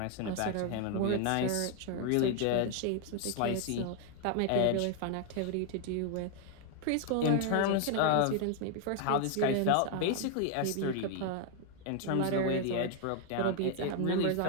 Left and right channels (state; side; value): different; both; correlation 0.00